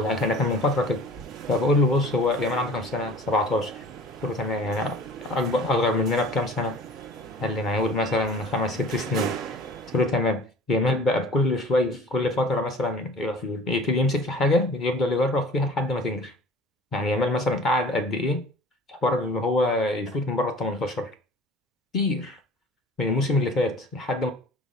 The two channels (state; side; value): normal; both; correlation 0.45